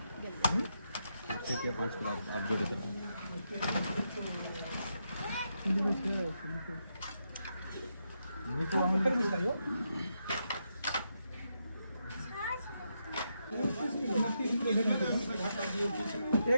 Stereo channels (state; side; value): inverted; both; correlation -0.82